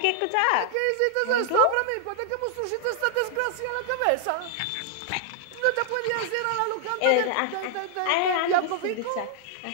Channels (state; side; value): different; both; correlation 0.00